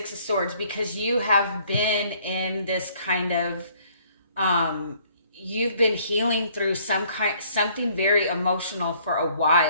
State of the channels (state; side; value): inverted; both; correlation -0.61